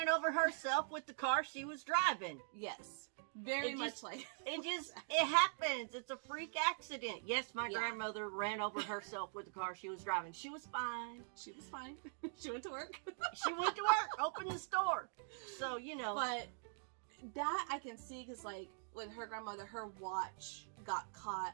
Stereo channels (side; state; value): left; silent; digital silence